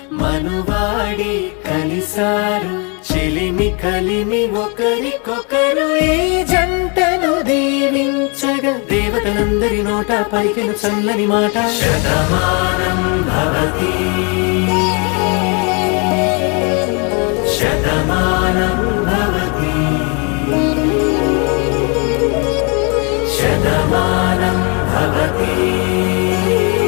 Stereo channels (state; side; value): quieter; right; 34.2 dB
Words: మనువాడి కలిసారు చెలిమి కలిమి ఒకరికొకరు ఈ జంటను దీవించగా దేవతలందరి నోట పలికిన చల్లని మాట శతమానం భవతి శతమానం భవతి శతమానం భవతి